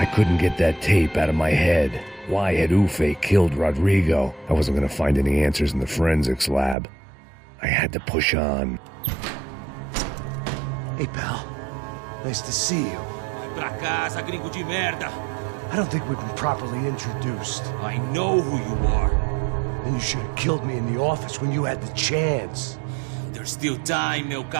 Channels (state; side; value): drops out; left; at 6.8 s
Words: Couldn't get that tape out of my head. Why had Ufe killed Rodrigo? I wasn't gonna find any answers in the forensics lab. I had to push on. Hey, pal. Nice to see you. Vai pra casa, gringo de merda. I don't think we've been properly introduced. I know who you are. Then you should have killed me in the office when you had the chance. There's still time, meu